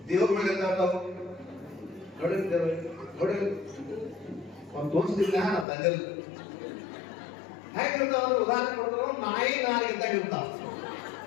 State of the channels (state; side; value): drops out; right; at 5.7 s